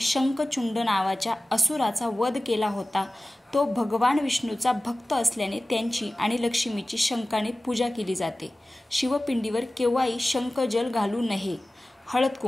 शंखचूंड नावाच्या असुराचा वध केला होता. तो भगवान विष्णूचा भक्त असल्याने त्यांची आणि लक्ष्मीची शंखाने पूजा केली जाते. शिवपिंडीवर केव्हाही शंखजल घालू नये. हळद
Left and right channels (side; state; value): both; normal; correlation 0.96